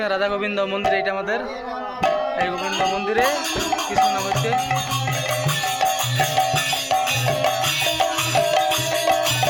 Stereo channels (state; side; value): identical; both; correlation 1.00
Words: রাধা গোবিন্দ মন্দির, এটা আমাদের এই গোবিন্দ মন্দিরে কৃষ্ণ নাম হচ্ছে।